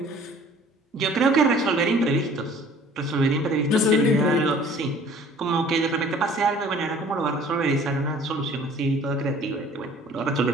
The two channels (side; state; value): both; normal; correlation 0.51